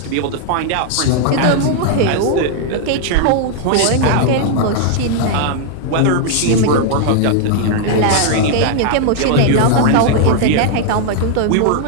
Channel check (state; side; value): different; both; correlation 0.00